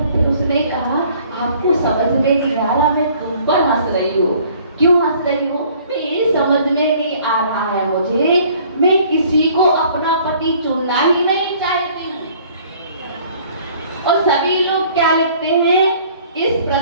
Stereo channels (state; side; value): inverted; both; correlation -0.56